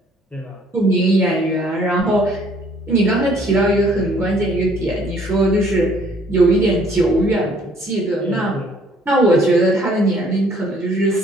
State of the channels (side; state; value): both; normal; correlation 0.61